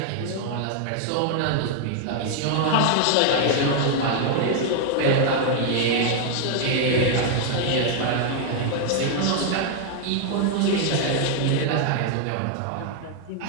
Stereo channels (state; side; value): different; both; correlation 0.00